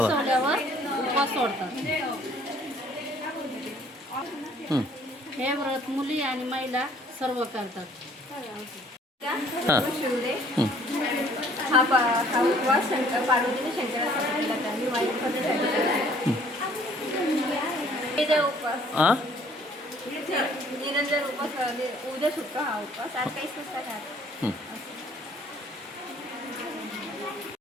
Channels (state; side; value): normal; both; correlation 0.58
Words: उपवास सोडतात. हे व्रत मुली आणि महिला सर्व करतात. हा उपवास पार्वतीने शंकरासाठी केला. त्यांनी वाईट पद्धतीसाठी उपवास निरंजन उपवास उद्या सुटतो. हा उपवास आज काहीच नसतात.